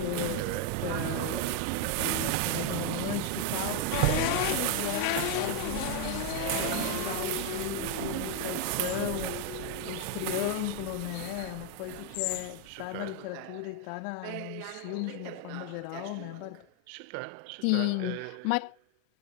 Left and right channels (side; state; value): both; different; correlation 0.01